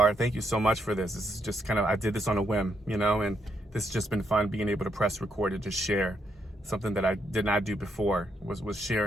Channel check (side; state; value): both; normal; correlation 0.77